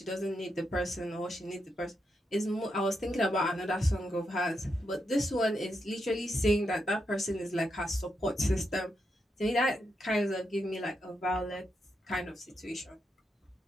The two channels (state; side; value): normal; both; correlation 0.83